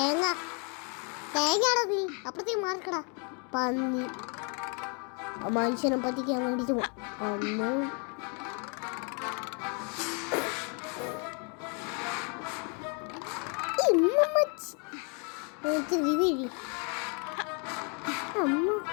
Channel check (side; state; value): right; quieter; 36.7 dB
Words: തേങ്ങയാടാ നീ, അപ്പുറത്തേക്ക് മാർക്കടാ പന്നി. മനുഷ്യനെ പറ്റിക്കാൻ വേണ്ടിട്ട് അന്ന്